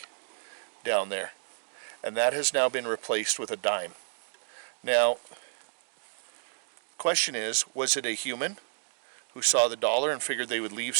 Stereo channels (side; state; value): left; silent; digital silence